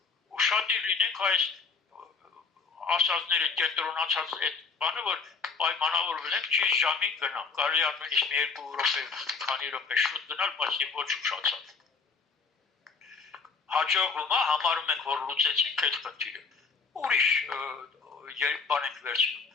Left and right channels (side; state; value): right; quieter; 5.0 dB